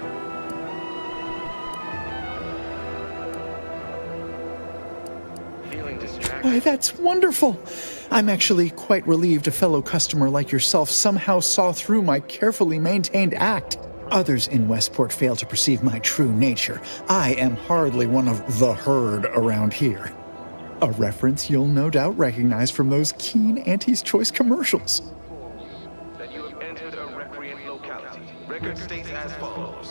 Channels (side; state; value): both; inverted; correlation -1.00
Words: Why, that's wonderful. I'm actually quite relieved a fellow customer like yourself somehow saw through my carefully maintained act. Others in Westport fail to perceive my true nature. I am hardly one of the herd around here. A reference you'll no doubt recognize from those keen Auntie's Choice commercials. That you have entered a recreant locality. Record states as